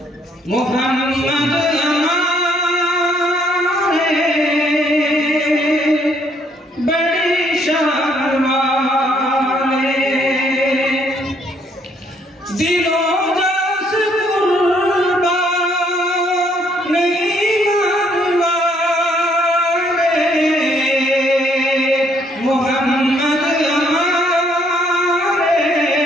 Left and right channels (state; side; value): normal; both; correlation 0.67